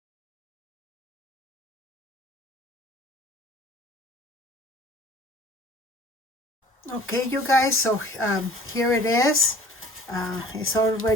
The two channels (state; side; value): normal; both; correlation 0.48